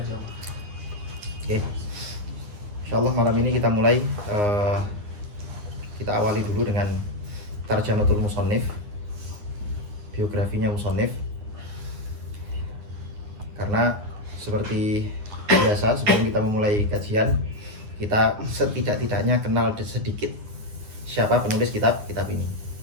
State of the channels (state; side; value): late; left; 9.7 ms